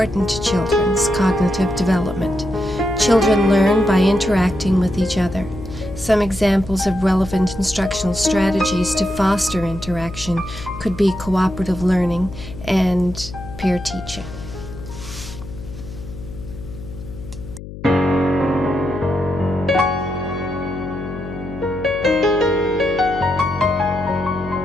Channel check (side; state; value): left; noise; hum, 12 dB below the sound